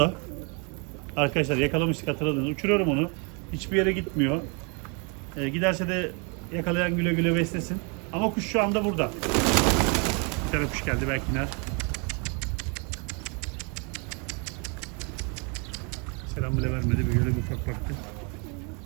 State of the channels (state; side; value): quieter; left; 34.4 dB